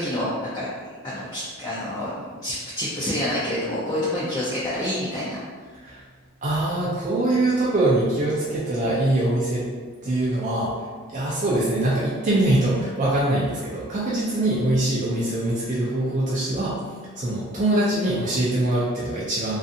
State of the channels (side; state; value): both; normal; correlation 0.54